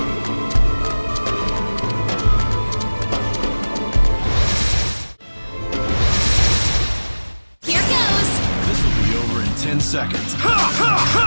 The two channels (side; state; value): both; inverted; correlation -1.00